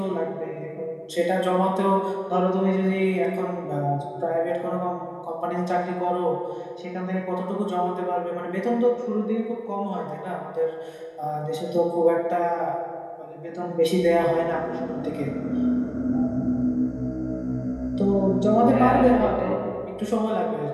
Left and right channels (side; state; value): both; identical; correlation 1.00